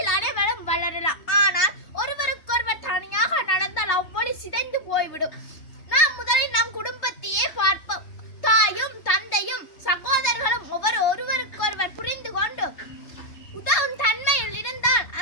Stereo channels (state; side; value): late; right; 3.3 ms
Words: அனைவரும் வளரலாம். ஆனால் ஒருவருக்கொருவர் தனியாக நடந்தால் அவ்வொளி சிதைந்து போய்விடும். நாம் முதலில் நம் குடும்பத்தையே பார்ப்போம். தாயும் தந்தையும் சகோதரர்களும் ஒருவருக்கொருவர் புரிந்து கொண்டு உதவும் தன்மையில் இருந்தால்